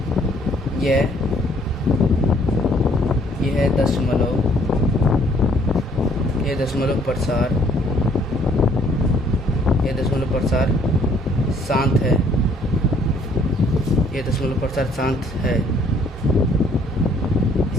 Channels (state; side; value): normal; both; correlation 0.63